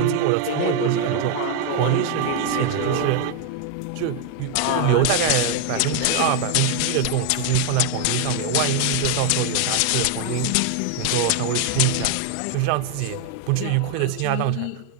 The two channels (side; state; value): both; different; correlation 0.01